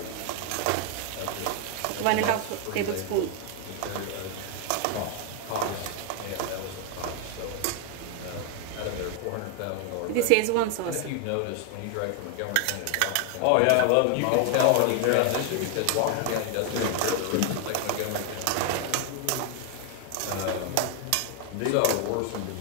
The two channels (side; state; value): both; different; correlation 0.01